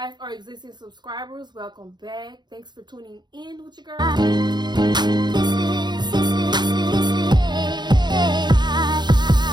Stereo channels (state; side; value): late; left; 0.21 ms